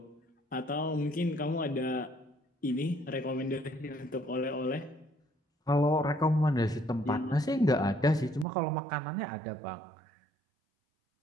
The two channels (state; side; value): drops out; left; at 8.5 s